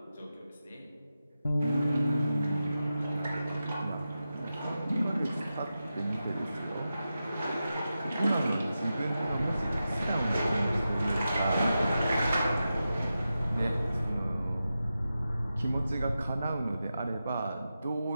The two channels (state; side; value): inverted; both; correlation -0.91